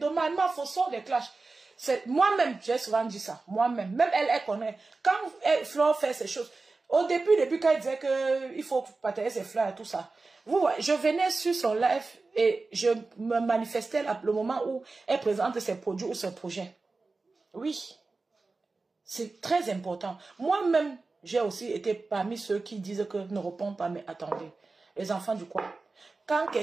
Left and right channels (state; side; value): quieter; left; 3.7 dB